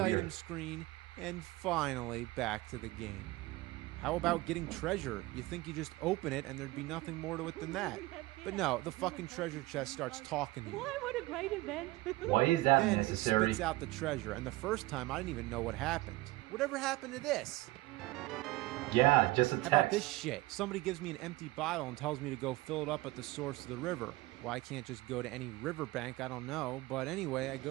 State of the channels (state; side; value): quieter; left; 19.3 dB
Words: item screen, and finally back to the game. How about getting treasure? You think you just open it and there'd be nothing more to it than that. But no, the fucking treasure chest starts talking to you. What a great event. Why is that Then necessary? it spits out the treasure, and the first time I didn't even know what happened. Whatever happened to this? Yeah, just a How about this text. shit? Somebody gives me an empty bottle and tells me to go fill it up at the source of the river. Why I can't just go to any riverbank, I don't know. But anyway, I